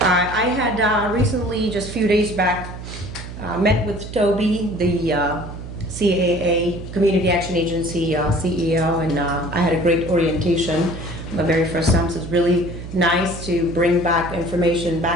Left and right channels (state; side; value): noise; right; hum, 11 dB below the sound